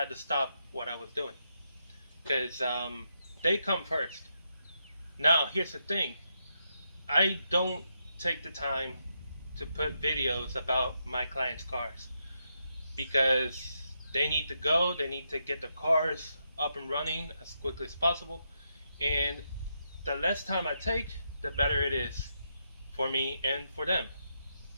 to stop what I was doing because they come first. Now, here's the thing. I don't take the time to put videos about my clients' cars because they need to go, they need to get the cars up and running as quickly as possible, and the less time I take, the better it is for me and for them.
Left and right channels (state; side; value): inverted; both; correlation -0.82